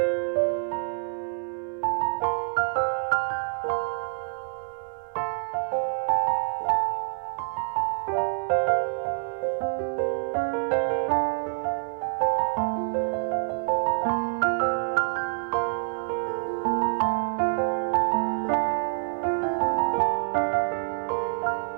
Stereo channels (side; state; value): left; silent; digital silence